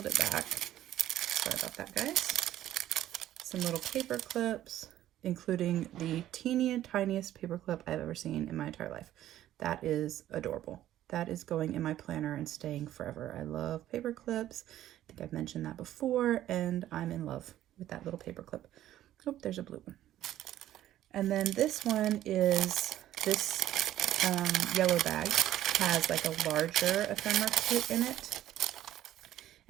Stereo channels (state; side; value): quieter; left; 13.0 dB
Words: it back. Sorry about that, guys. Some little paper clips, including the tiniest paper clip I've ever seen in my entire life. That is adorable. That is going in my planner and staying forever. I love paper clips. I think I've mentioned that before, and I'm in love with that little paper clip. Oh, there's a blue one. And then this one is, this yellow bag has like a larger ephemera kit in it.